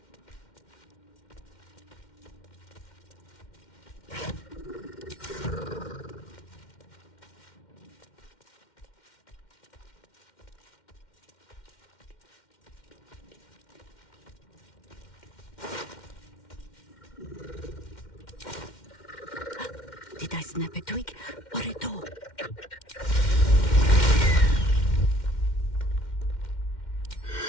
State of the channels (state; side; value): late; right; 2.1 ms